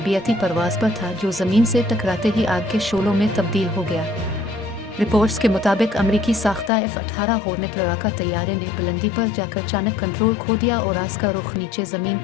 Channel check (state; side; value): drops out; right; at 6.7 s